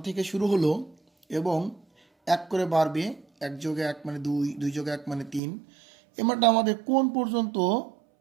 থেকে শুরু হলো এবং 1 করে বাড়বে, 1 যোগে 1 মানে 2, 2 যোগে 1 মানে 3। এই মানটা আমাদের কোন পর্যন্ত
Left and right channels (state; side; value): drops out; left; at 5.4 s